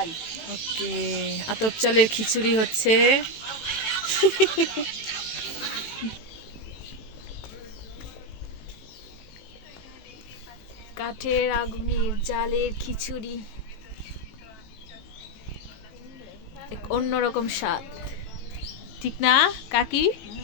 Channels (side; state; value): right; late; 18 ms